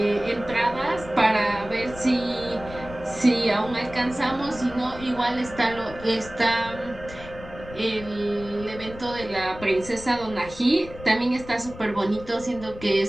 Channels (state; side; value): noise; left; rumble, 15 dB below the sound